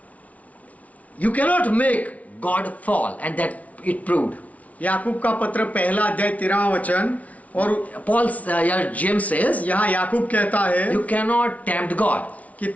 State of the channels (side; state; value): right; late; 0.068 ms